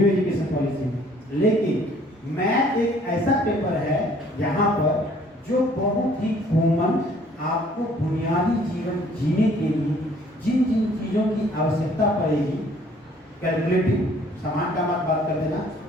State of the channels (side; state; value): both; normal; correlation 0.58